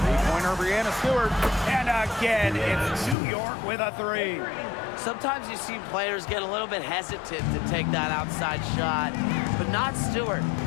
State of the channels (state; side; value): drops out; right; at 3.2 s